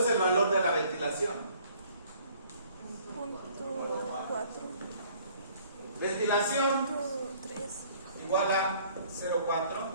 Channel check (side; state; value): both; inverted; correlation -0.57